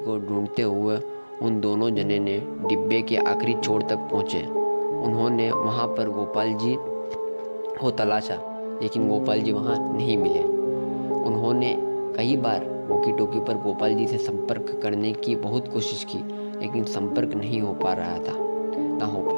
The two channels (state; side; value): inverted; both; correlation -1.00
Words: ढूंढते हुए उन दोनों जने ने डिब्बे के आखिरी छोर तक पहुँचे। उन्होंने वहाँ पर गोपाल जी को तलाशा, लेकिन गोपाल जी वहाँ नहीं मिले। उन्होंने कई बार वॉकी टॉकी पर गोपाल जी से संपर्क करने की बहुत कोशिश की, लेकिन संपर्क नहीं हो पा रहा था, ना हो